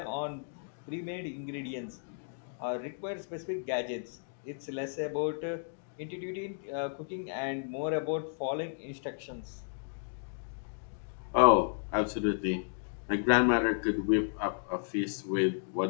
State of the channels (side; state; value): right; silent; digital silence